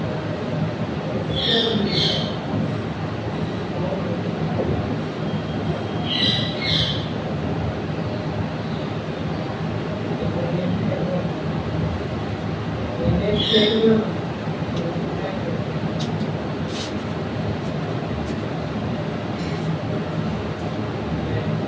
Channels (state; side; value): identical; both; correlation 1.00